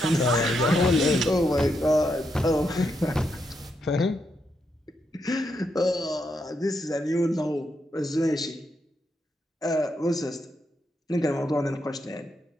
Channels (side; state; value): both; normal; correlation 0.81